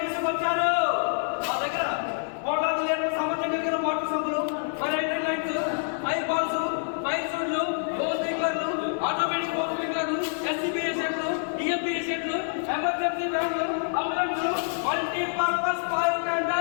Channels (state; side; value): silent; right; 60 dB below the other